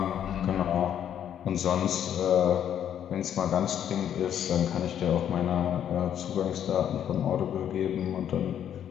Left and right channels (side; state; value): right; quieter; 9.7 dB